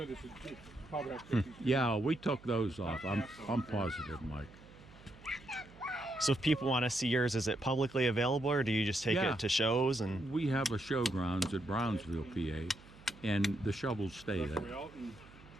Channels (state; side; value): noise; right; hum, 22 dB below the sound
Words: this is probably Yeah, we took those off. I'm positive, Mike. So if people want to see yours, is it publicly available, or do you just take Yeah. it to shows? And We have a showgrounds at Brownsville, PA, and the shovels stay there.